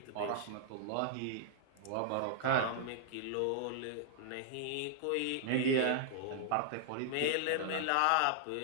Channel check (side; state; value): both; different; correlation -0.01